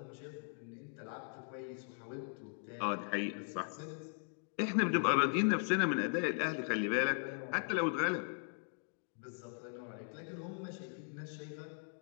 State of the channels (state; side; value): silent; right; 52 dB below the other